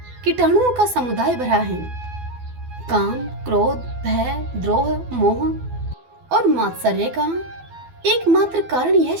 कीटाणुओं का समुदाय भरा है। काम, क्रोध, भय, द्रोह, मोह और मात्सर्य का एकमात्र कारण यह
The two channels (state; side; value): late; left; 12 ms